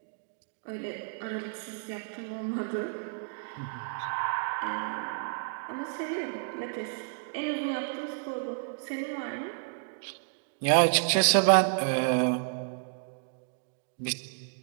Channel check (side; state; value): left; silent; digital silence